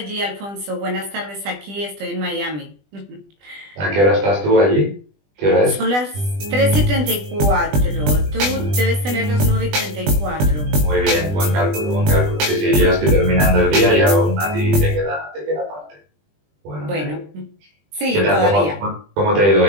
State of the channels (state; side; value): late; left; 20 ms